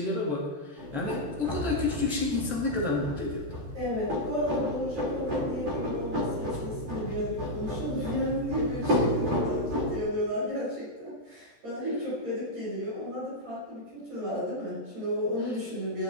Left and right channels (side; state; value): left; late; 13 ms